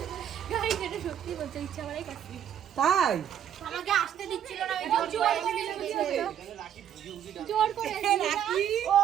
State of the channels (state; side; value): quieter; left; 9.7 dB